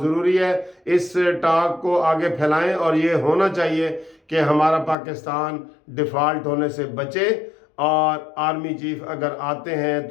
ضروری ہے، اس ٹاک کو آگے پھیلائیں، اور یہ ہونا چاہیے کہ ہمارا پاکستان ڈیفالٹ ہونے سے بچے، اور آرمی چیف اگر آتے ہیں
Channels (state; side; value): drops out; right; at 5.0 s